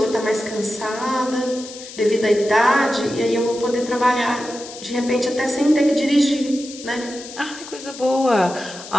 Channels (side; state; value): left; noise; hiss, 14 dB below the sound